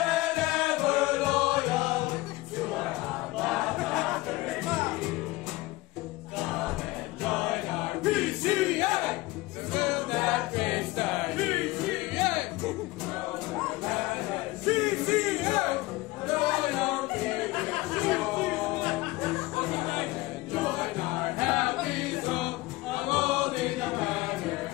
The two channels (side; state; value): right; quieter; 20.3 dB